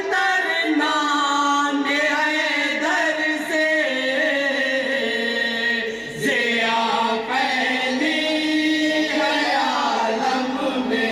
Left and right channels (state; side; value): identical; both; correlation 1.00